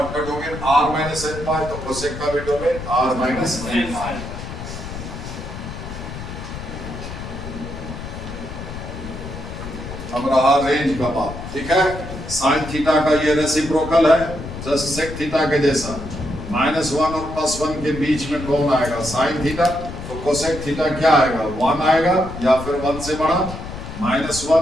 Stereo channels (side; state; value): left; noise; rumble, 9 dB below the sound